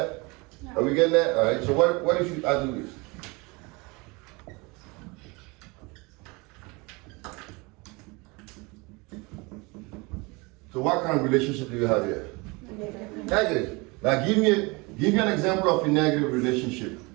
No. Are we getting that? All right. So what if I do this? So what kind of relationship do you have here? Negative. Negative. Now give me an example of a negative relationship.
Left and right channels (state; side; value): quieter; left; 26.4 dB